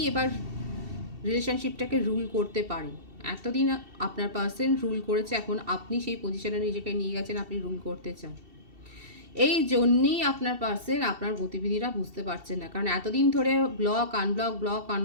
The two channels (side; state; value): left; late; 2.7 ms